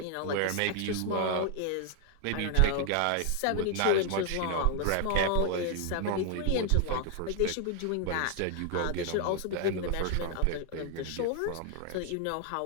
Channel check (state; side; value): different; both; correlation 0.00